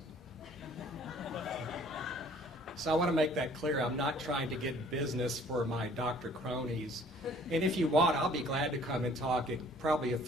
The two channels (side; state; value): both; normal; correlation 0.56